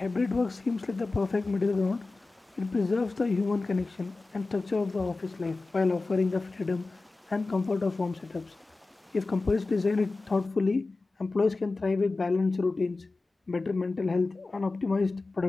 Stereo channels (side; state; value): right; quieter; 3.5 dB